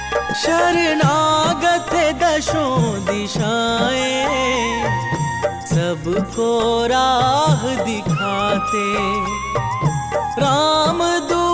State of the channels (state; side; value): identical; both; correlation 1.00